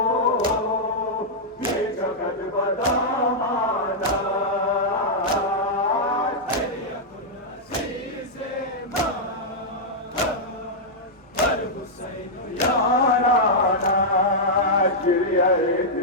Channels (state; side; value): normal; both; correlation -0.07